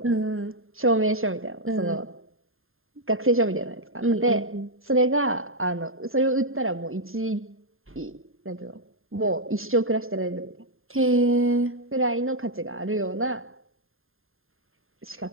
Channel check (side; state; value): left; late; 0.61 ms